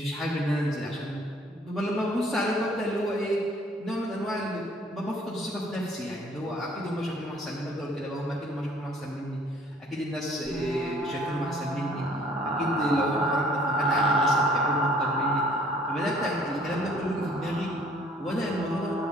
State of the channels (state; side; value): normal; both; correlation 0.57